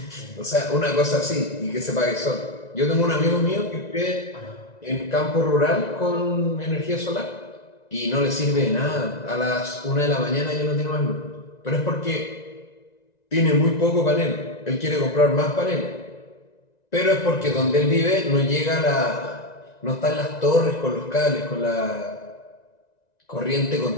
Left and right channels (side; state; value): right; late; 1.9 ms